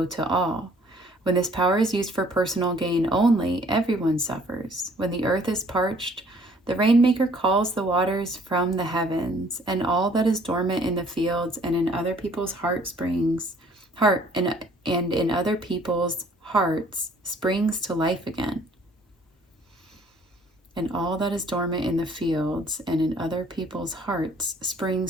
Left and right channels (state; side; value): normal; both; correlation 0.58